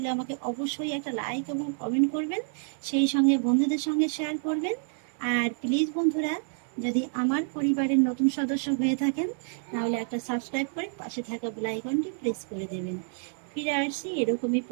আমাকে অবশ্যই একটা লাইক এবং কমেন্ট করবেন, সেই সঙ্গে বন্ধুদের সঙ্গে শেয়ার করবেন। আর প্লিজ বন্ধুরা, যদি আমার পরিবারের নতুন সদস্য হয়ে থাকেন তাহলে একটা সাবস্ক্রাইব করে পাশে থাকা বেল আইকনটি প্রেস করে দেবেন। ফিরে আসছি এরকমই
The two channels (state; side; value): silent; left; 59 dB below the other